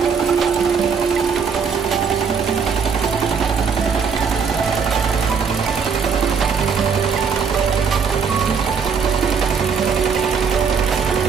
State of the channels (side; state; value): left; quieter; 6.2 dB